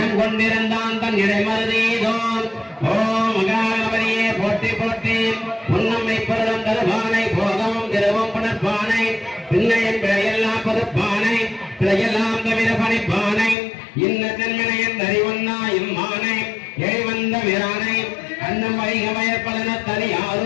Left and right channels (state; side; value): drops out; right; at 13.6 s